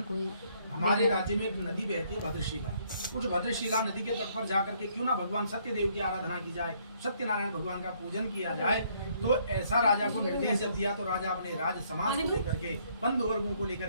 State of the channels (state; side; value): inverted; both; correlation -0.67